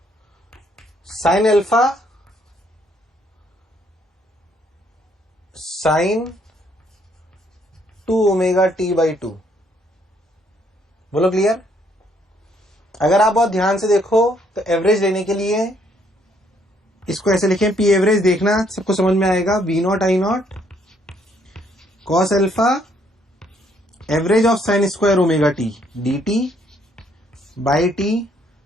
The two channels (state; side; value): normal; both; correlation 0.68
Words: sine alpha sign 2 omega T by 2। बोलो क्लियर? अगर आप बहुत ध्यान से देखो तो एवरेज लेने के लिए इसको ऐसे लिखें, पी एवरेज देखना सबको समझ में आएगा। V not I not cos alpha average of sine square omega T D T by T